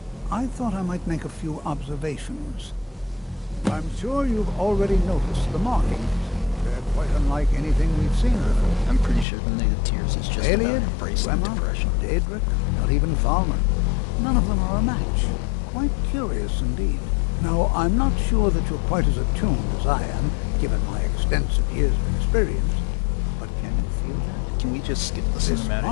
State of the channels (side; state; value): right; drops out; at 9.2 s